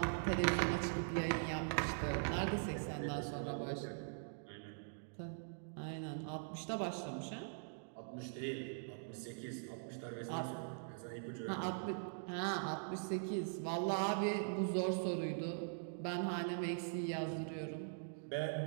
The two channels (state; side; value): silent; left; digital silence